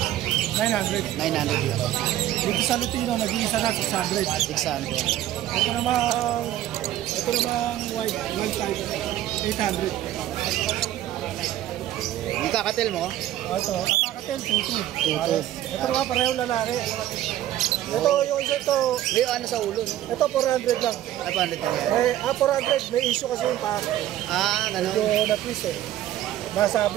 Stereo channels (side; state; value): left; quieter; 13.2 dB